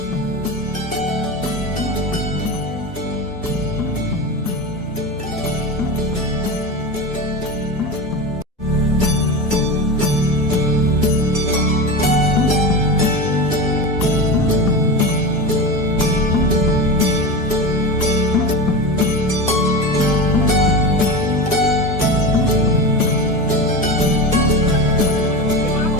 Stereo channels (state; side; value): normal; both; correlation 0.24